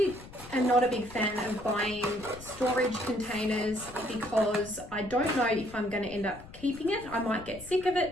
am not a big fan of buying storage containers because I don't know if I'm going to end up keeping it. I might get sick of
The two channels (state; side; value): noise; left; rumble, 17 dB below the sound